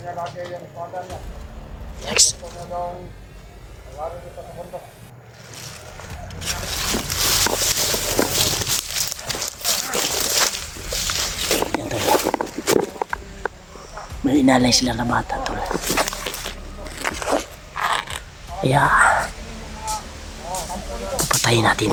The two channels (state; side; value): identical; both; correlation 1.00